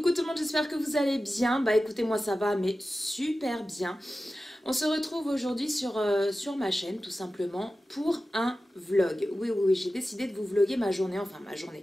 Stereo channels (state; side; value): normal; both; correlation 0.94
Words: tout le monde, j'espère que vous allez bien. Bah écoutez, moi ça va, mais super bien. On se retrouve aujourd'hui sur ma chaîne, tout simplement, pour un vlog. Oui, j'ai décidé de vous vlogger ma journée, enfin ma journée.